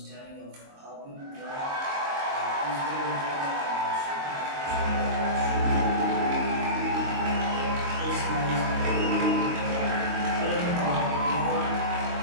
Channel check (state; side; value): late; left; 22 ms